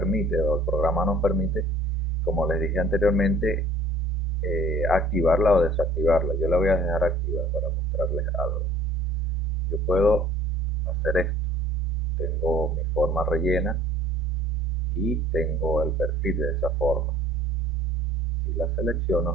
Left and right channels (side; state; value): both; normal; correlation 0.52